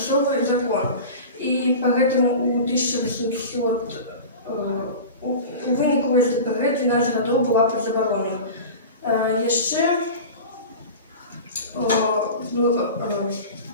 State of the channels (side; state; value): both; inverted; correlation -0.33